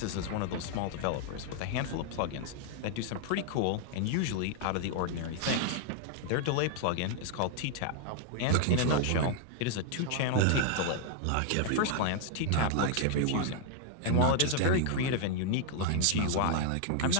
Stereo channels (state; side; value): different; both; correlation 0.00